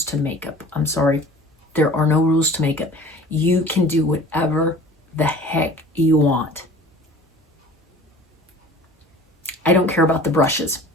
to makeup. I'm sorry. There are no rules to makeup. You can do whatever the heck you want. I don't care about the brushes.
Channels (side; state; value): both; normal; correlation 0.45